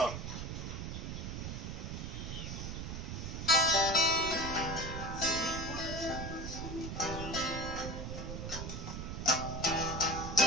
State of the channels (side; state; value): right; noise; rumble, 5 dB below the sound